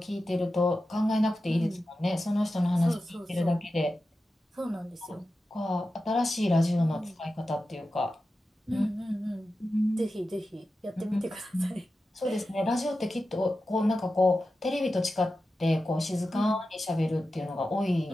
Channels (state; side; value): normal; both; correlation 0.92